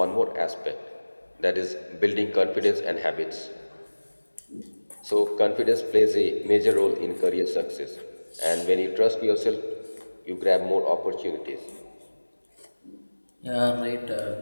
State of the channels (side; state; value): both; inverted; correlation -1.00